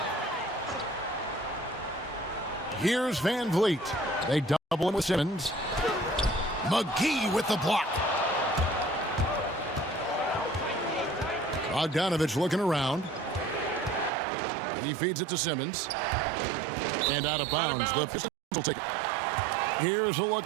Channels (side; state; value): left; drops out; at 14.1 s